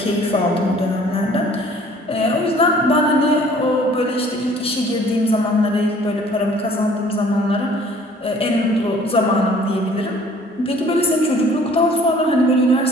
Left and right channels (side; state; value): both; normal; correlation 0.54